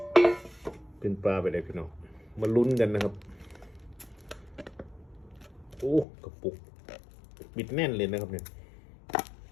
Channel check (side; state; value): right; drops out; at 6.1 s